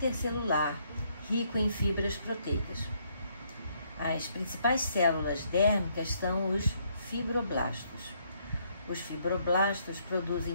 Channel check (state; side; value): inverted; both; correlation -0.70